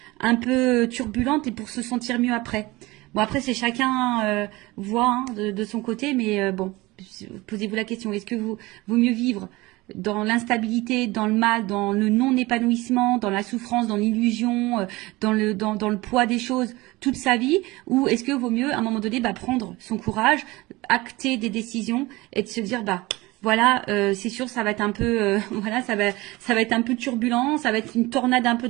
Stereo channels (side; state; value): left; quieter; 21.1 dB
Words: un peu turbulente et pour se sentir mieux après. Bon, après, c'est chacun voit de son côté, mais bon, posez-vous la question, est-ce que vaut mieux vivre dans l'instabilité, dans le mal, dans le non-épanouissement, dans la souffrance, dans l'illusion, dans le poids des choses toute sa vie, ou est-ce que vaut mieux à un moment donné prendre son courage, acter des décisions et de se dire voilà, c'est sûr, ça va être un peu, voilà, ça va être un peu turbulent, ça va être une tornade un peu